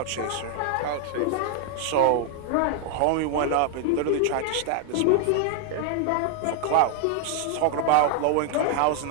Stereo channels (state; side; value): different; both; correlation 0.00